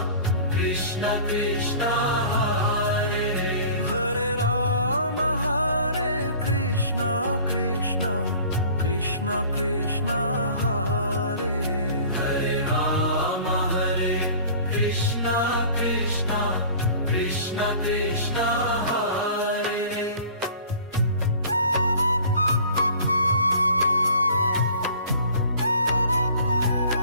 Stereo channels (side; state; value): both; inverted; correlation -0.46